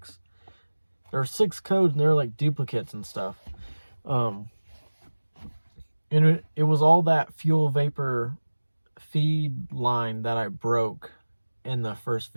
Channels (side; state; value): both; inverted; correlation -1.00